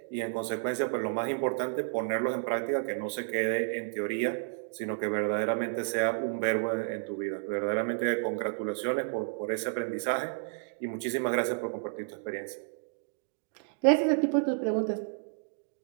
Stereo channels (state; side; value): silent; left; digital silence